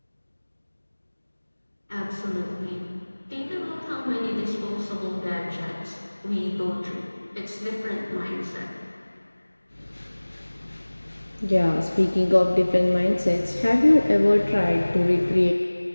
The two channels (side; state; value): both; inverted; correlation -1.00